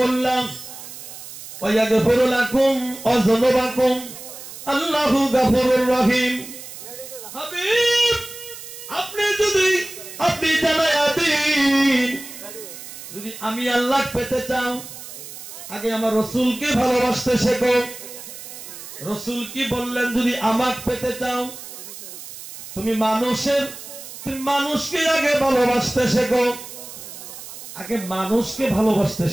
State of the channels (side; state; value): right; noise; hiss, 13 dB below the sound